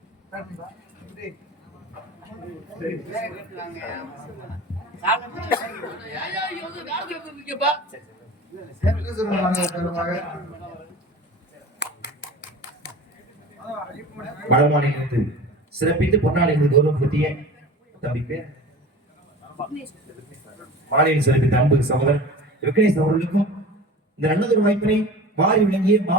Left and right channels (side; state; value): both; normal; correlation 0.37